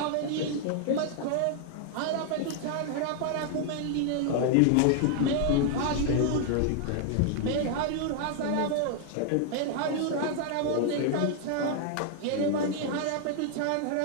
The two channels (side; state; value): both; different; correlation 0.00